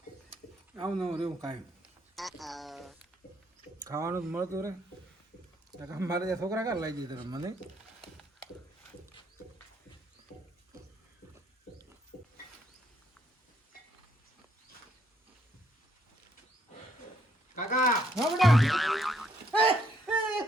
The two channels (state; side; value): normal; both; correlation 0.70